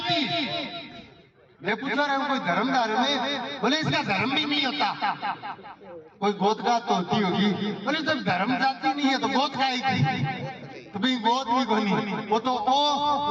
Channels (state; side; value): identical; both; correlation 1.00